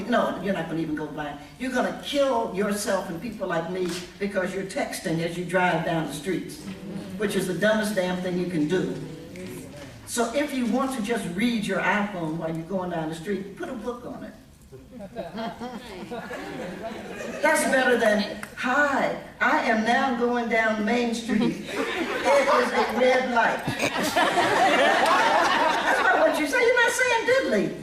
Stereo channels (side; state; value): both; identical; correlation 1.00